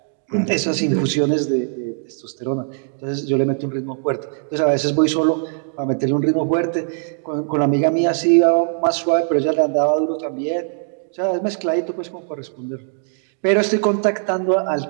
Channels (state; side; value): silent; left; 65 dB below the other